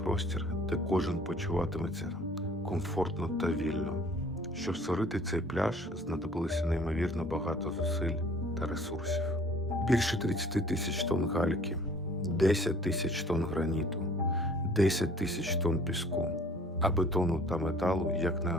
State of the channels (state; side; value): normal; both; correlation 0.53